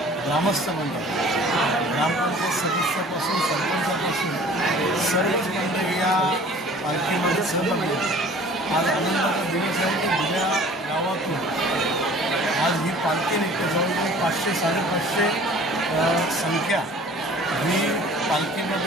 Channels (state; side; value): normal; both; correlation 0.48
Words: ग्रामस्थ मंडळ ग्रामपंचायत सदस्यापासून सरपंचापासून सर्वच मंडळ या पालखीमध्ये सहभागी आज आनंदाचा दिवस आहे की उद्या गावातून आज ही पालखी निघते जवळजवळ 500-550 संख्या ही